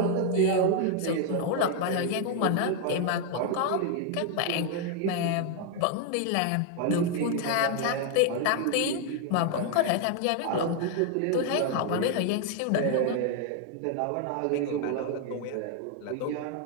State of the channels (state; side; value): different; both; correlation 0.00